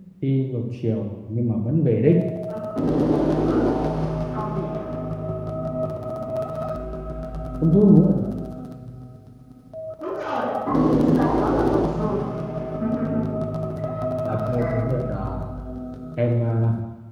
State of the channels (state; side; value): identical; both; correlation 1.00